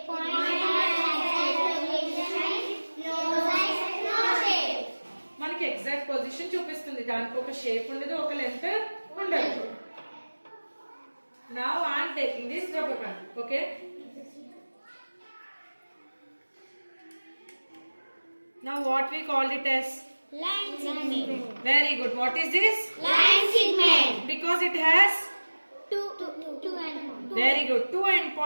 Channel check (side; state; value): both; inverted; correlation -1.00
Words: point has no size, no shape. మనకి exact position చూపిస్తుంది. దానికి ఒక shape ఉండదు, ఒక length ఉండదు. Now I am taking this rubber band. Okay. Now what we called it as? Line segment. Very good. What is this? Line segment. Because it has? Two end points. Very good. 2 end